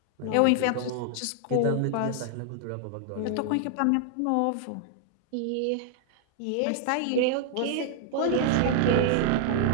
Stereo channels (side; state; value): both; different; correlation -0.01